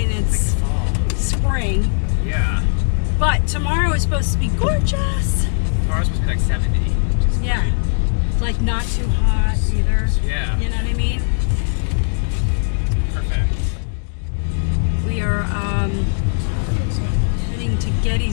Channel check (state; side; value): silent; right; digital silence